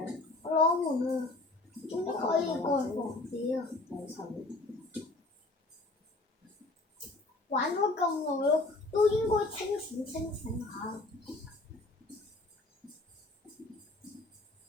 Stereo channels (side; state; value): right; quieter; 3.0 dB